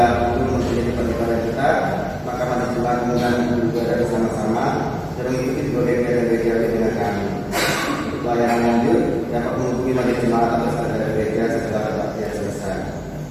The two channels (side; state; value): both; identical; correlation 1.00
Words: belum menjadi beribadah kita, maka majelis Jemaat mengundang beribadah bersama-sama dan mengikuti berbagai gereja dengan kami. Untuk pelayanan lanjut dapat menghubungi majelis Jemaat atau saudara gereja setelah baktian selesai.